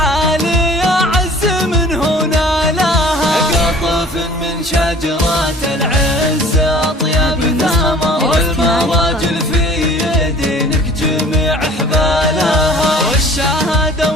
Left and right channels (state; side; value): normal; both; correlation 0.49